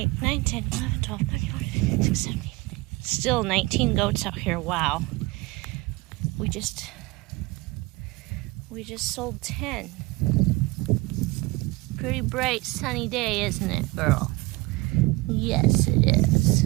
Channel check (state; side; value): quieter; left; 21.9 dB